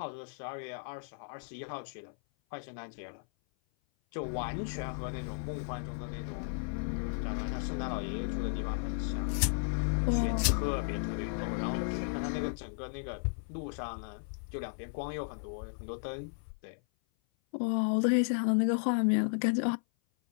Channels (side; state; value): right; silent; 55 dB below the other